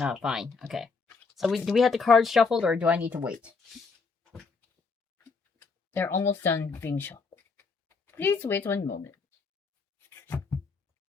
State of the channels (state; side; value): quieter; right; 4.6 dB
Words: fine. Okay. So do we have the cards shuffled, or do I need to wait? They're almost done being shuffled. Please wait 1 moment.